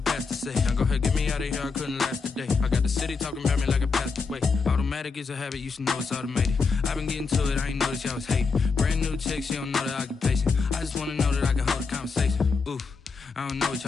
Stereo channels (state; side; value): quieter; right; 4.8 dB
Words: say. Now go ahead, get me out of here, I couldn't last today. I got the city talking about me like I passed away. Automatic is a habit, you should know it's automated. I've been getting to it, I ain't noticed y'all was hating. Brand new chick, she don't know the occupation. I just wanna know that I can hold a conversation. Oof, I don't know what